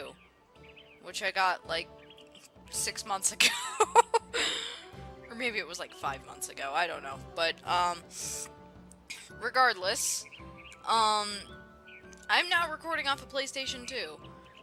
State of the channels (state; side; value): identical; both; correlation 1.00